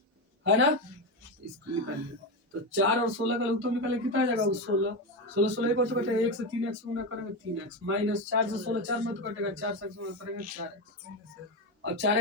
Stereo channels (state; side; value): normal; both; correlation 0.14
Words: है ना, इसको निकालिए। तो 4 और 16 का उत्तर निकाले कितना आ जाएगा 16, 16 16 को तो कटेगा, 1 से 3x गुना करेंगे 3x, माइनस 4 से 16 4 में तो कटेगा, 4 से गुना करेंगे 4x, अब